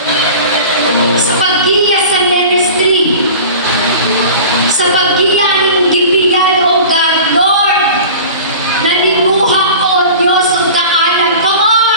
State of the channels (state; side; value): inverted; both; correlation -0.38